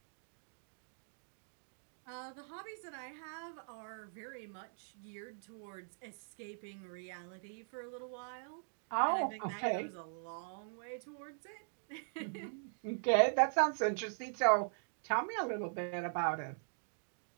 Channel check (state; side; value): silent; left; digital silence